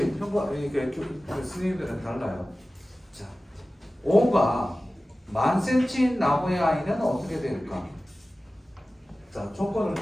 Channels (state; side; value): normal; both; correlation 0.96